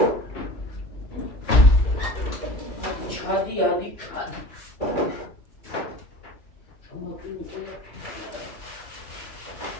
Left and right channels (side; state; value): right; late; 2.9 ms